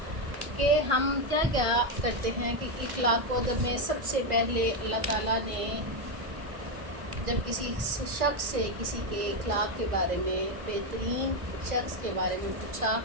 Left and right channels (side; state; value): left; late; 1.6 ms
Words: کہ ہم کیا کیا کرتے ہیں کہ اخلاق و ادب میں سب سے پہلے اللہ تعالیٰ نے جب کسی شخص سے کسی کے اخلاق کے بارے میں، بہترین شخص کے بارے میں پوچھا